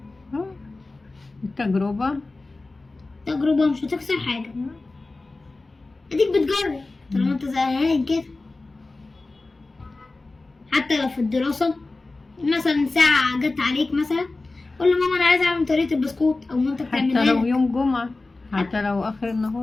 التجربة تجربه مش هتخسر حاجه، اديك بتجرب طالما انت زهقان كده. حتى لو في الدراسه مثلا ساعه جت عليك مثلا، قول لماما انا عايزه اعمل طريقه البسكوت، او مامتك تعملها حتى لو لك. يوم جمعة، حتى لو اخر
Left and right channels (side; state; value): right; quieter; 3.3 dB